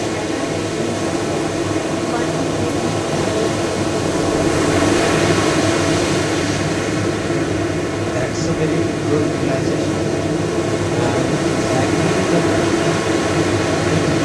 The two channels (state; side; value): identical; both; correlation 1.00